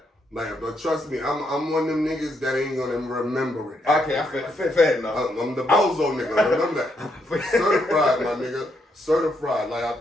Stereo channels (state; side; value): normal; both; correlation 0.77